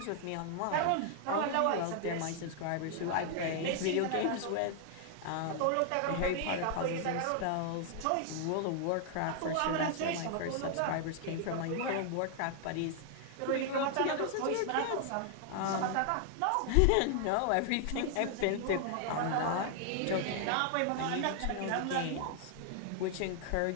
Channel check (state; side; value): different; both; correlation 0.00